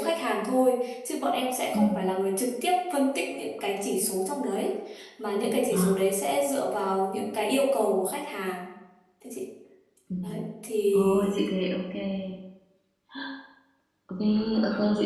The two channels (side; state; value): both; identical; correlation 1.00